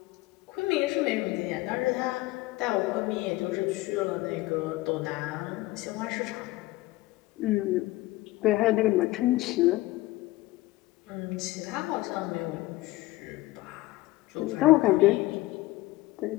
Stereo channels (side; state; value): right; quieter; 18.7 dB